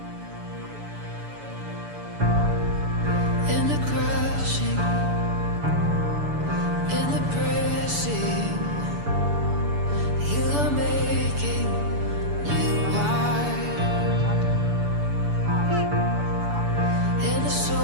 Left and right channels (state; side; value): late; left; 6.9 ms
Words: In the crushing, in the pressing, you are making new wine. In the